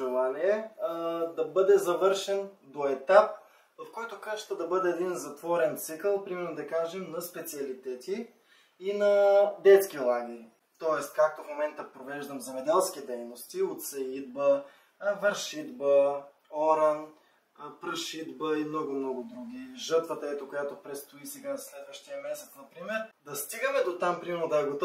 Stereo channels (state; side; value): identical; both; correlation 1.00